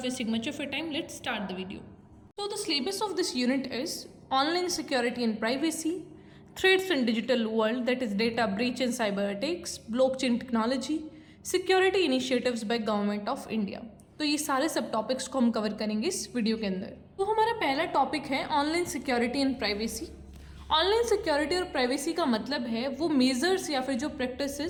wasting much of your time, let's start the video. So the syllabus of this unit is online security and privacy, threats in digital world, that is data breach and cyber attacks, blockchain technology, security initiatives by government of India। तो ये सारे सब topics को हम cover करेंगे इस video के अंदर। तो हमारा पहला टॉपिक है online security and privacy. Online security और प्राइवेसी का मतलब है वो मेजर्स या फिर जो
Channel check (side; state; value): both; identical; correlation 1.00